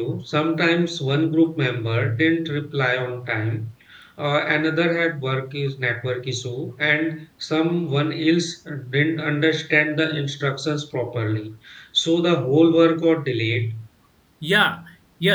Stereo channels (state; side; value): identical; both; correlation 1.00